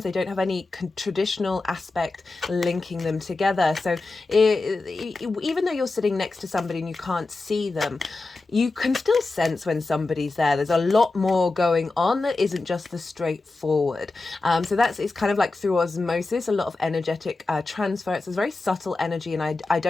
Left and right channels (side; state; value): right; quieter; 3.4 dB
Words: they don't have any traditional aspect linking them together. So even though you're sitting next to somebody and you can't see them, you can still sense when somebody's there. There's a lot more going on that isn't just the straightforward. So it's kind of like through osmosis, a lot of energetic transfer. It's a very subtle energy, and I